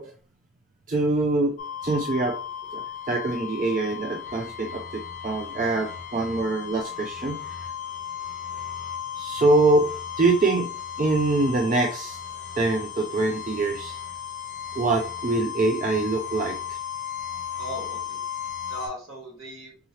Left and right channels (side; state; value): both; normal; correlation 0.44